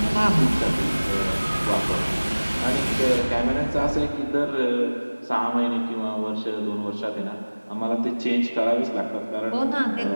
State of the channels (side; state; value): both; inverted; correlation -1.00